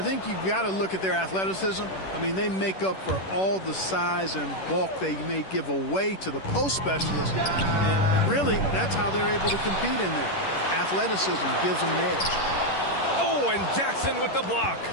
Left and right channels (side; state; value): right; late; 11 ms